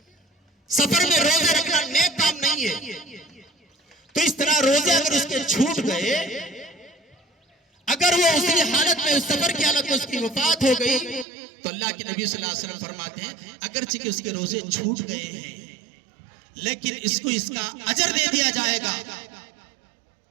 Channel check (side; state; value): left; drops out; at 11.2 s